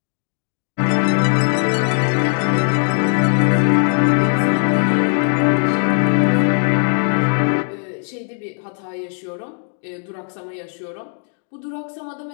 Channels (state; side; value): silent; right; 61 dB below the other